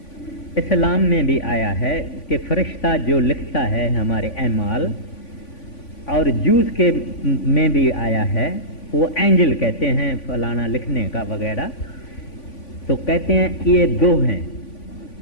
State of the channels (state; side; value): late; right; 3.5 ms